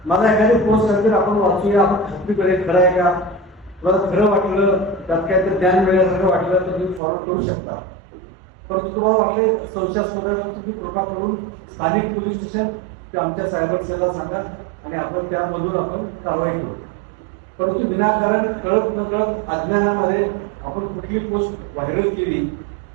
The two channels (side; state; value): left; drops out; at 7.0 s